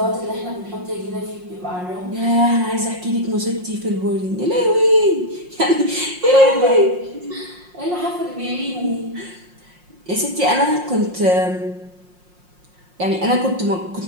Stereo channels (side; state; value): left; late; 5.6 ms